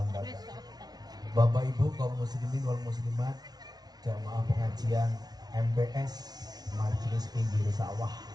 Bapak Ibu kaum muslimin wal muslimat, jamaah pengajian MPS Majelis Pinggir Sawah.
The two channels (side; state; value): left; late; 0.19 ms